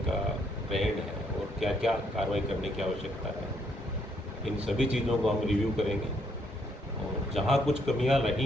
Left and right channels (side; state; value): both; normal; correlation 0.71